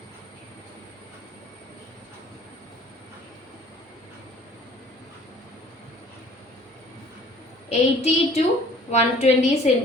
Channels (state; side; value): normal; both; correlation 0.52